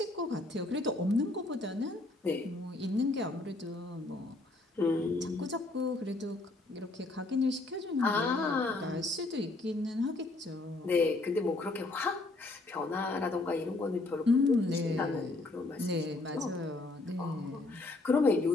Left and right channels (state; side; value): quieter; right; 3.0 dB